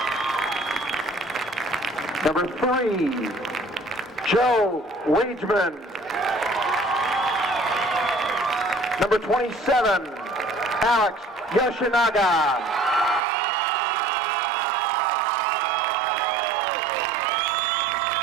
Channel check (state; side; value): drops out; left; at 13.2 s